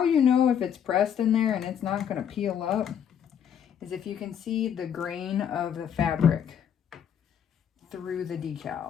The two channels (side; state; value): right; quieter; 8.6 dB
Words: you know if it's pressed in there and it's not going to peel up is if you can see the grain of the fabric through the